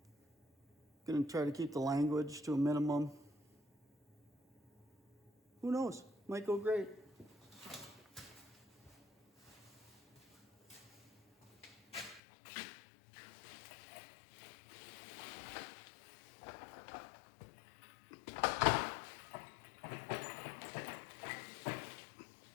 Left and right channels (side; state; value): right; drops out; at 12.2 s